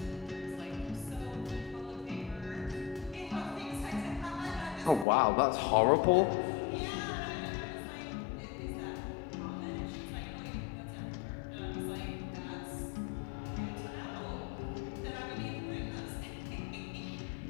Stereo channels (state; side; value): drops out; right; at 5.1 s